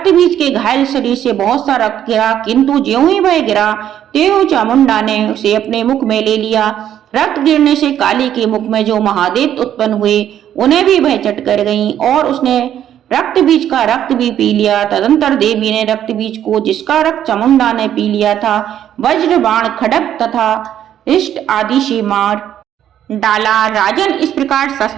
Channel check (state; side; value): quieter; left; 10.6 dB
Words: बीज के घायल शरीर से बहुत सा रक्त गिरा, किंतु ज्यों ही वह गिरा त्यों चामुंडा ने उसे अपने मुख में ले लिया। रक्त गिरने से काली के मुख में जो महादैत्य उत्पन्न हुए उन्हें भी वह चट कर गई और उसने रक्त बीज का रक्त भी पी लिया। तदंतर देवी ने रक्त बीज को, जिसका रक्त चामुंडा ने पी लिया था, वज्र बाण खड्ग तथा इष्ट आदि से मार डाला। राजन, इस प्रकार